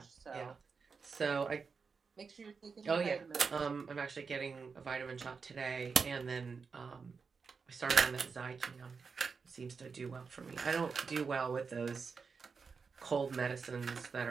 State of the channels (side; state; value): left; quieter; 5.2 dB